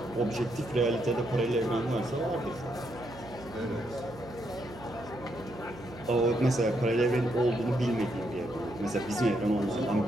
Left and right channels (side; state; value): right; noise; hum, 17 dB below the sound